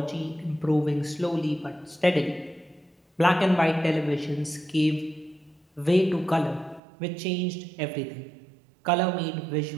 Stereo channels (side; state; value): left; drops out; at 6.8 s